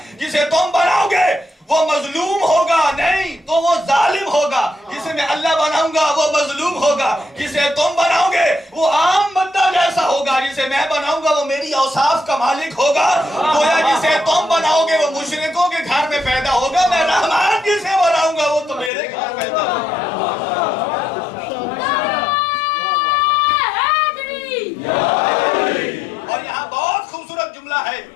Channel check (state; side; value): drops out; right; at 18.9 s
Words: جسے تم بناؤ گے وہ مظلوم ہوگا نہیں تو وہ ظالم ہوگا، جسے میں اللہ بناؤں گا وہ مظلوم ہوگا، جسے تم بناؤ گے وہ عام بندہ جیسا ہوگا، جسے میں بناؤں گا وہ میری اوصاف کا مالک ہوگا۔ گویا جسے تم بناؤ گے وہ مشرکوں کے گھر میں پیدا ہوگا، میں رحمان جسے بناؤں گا وہ تو میرے گھر پیدا ہوگا۔ اور یہاں بہت خوبصورت جملہ ہے